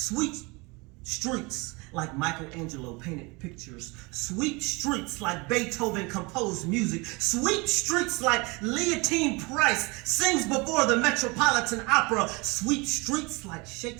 streets like Michelangelo painted pictures, sweet streets like Beethoven composed music, sweet streets like Leontine Price sings before the Metropolitan Opera, sweet streets like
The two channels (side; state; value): left; quieter; 26.8 dB